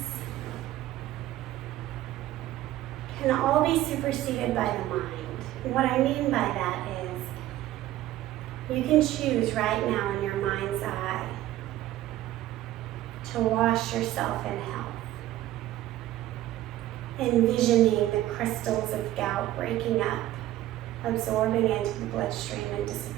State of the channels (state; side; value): quieter; left; 14.5 dB